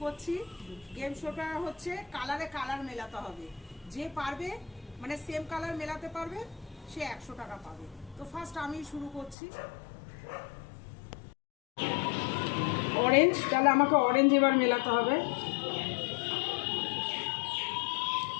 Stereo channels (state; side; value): drops out; right; at 9.3 s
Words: করছি। গেম শোটা হচ্ছে কালারে কালার মেলাতে হবে। যে পারবে মানে সেম কালার মেলাতে পারবে সে 100 টাকা পাবে। তো ফার্স্ট আমি শুরু করছি। অরেঞ্জ, তাহলে আমাকে অরেঞ্জ এবার মেলাতে হবে।